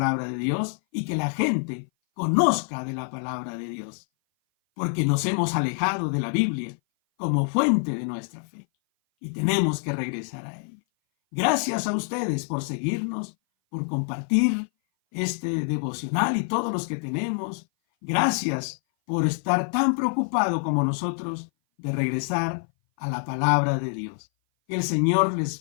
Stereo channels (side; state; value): right; silent; 57 dB below the other